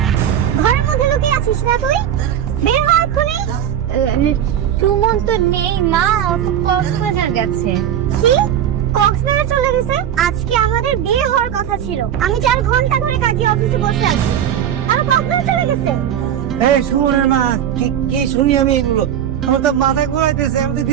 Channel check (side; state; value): left; quieter; 10.0 dB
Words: ঘরের মধ্যে লুকিয়ে আছিস না তুই? বের হ এক্ষুনি। সুমন তো নেই মা, ও তো কক্সবাজার গেছে। কি? কক্সবাজার চলে গেছে? আজকে আমাদের বিয়ে হওয়ার কথা ছিল, আমি 4 ঘন্টা ধরে কাজী অফিসে বসে আছি, আর কক্সবাজার চলে গেছে। এই সুমনের মা, কি শুনি আমি এগুলো? আমার তো মাথা ঘুরাইতেছে, আমি তো